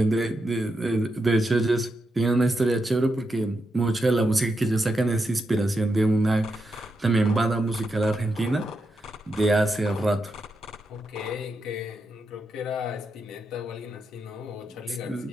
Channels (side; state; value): both; normal; correlation 0.85